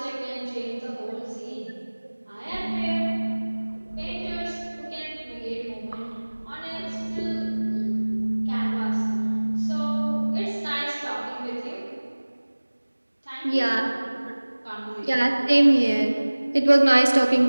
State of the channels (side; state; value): both; inverted; correlation -1.00